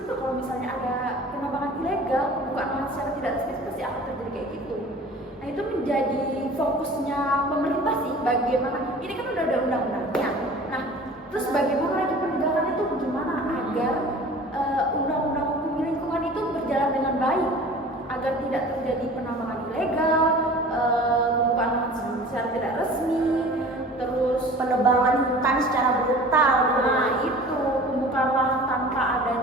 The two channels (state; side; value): normal; both; correlation 0.43